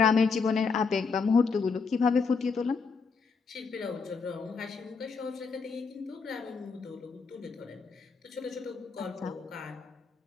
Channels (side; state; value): right; quieter; 5.0 dB